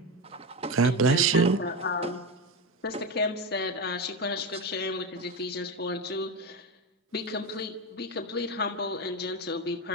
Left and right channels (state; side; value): normal; both; correlation 0.17